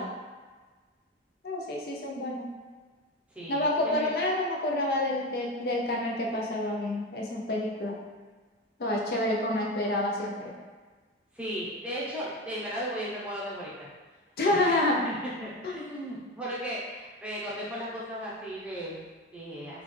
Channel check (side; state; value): both; normal; correlation 0.21